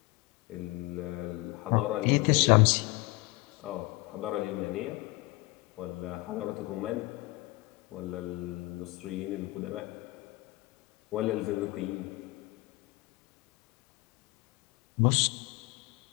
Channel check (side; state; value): right; quieter; 22.0 dB